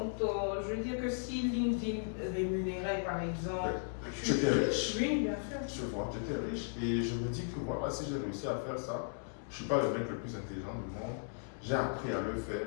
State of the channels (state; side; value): silent; right; digital silence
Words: veux dire que si LinkedIn rémunérait par exemple. Tu étais riche. Oui, bien sûr. Tu vois, tu étais riche. Et je me dis que voilà, si j'ai réussi à faire ça, je ne suis pas le mec le plus intelligent du monde. J'ai appris à le faire